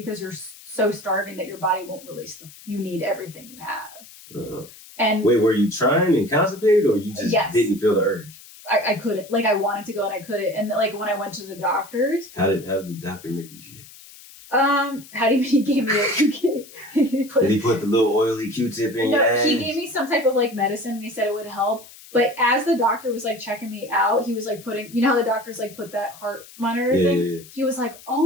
you're so starving that your body won't release you need everything you have. Uh-huh. And wait, were you trying and constipated or you just didn't feel the urge? I couldn't. Like I wanted to go and I couldn't. And like when I went to the doctors. How did the doctor make you shit? How did he gave me did he put the little oily Q-tip in your ass? He gave me some type of like medicine and he said it would help. But as the doctor was like checking me out, he was like putting, you know how the doctors like put that heart monitor thing? Yeah. He was like,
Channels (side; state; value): left; noise; hiss, 20 dB below the sound